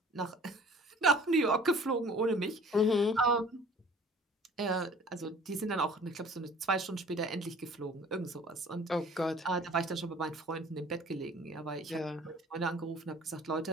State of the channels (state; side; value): normal; both; correlation 0.50